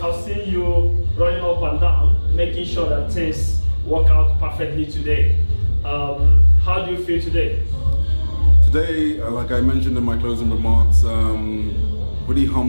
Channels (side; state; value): both; inverted; correlation -1.00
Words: seen you running up and down, making sure that things work out perfectly today. How do you feel today? Today, like I mentioned in my closing remarks, really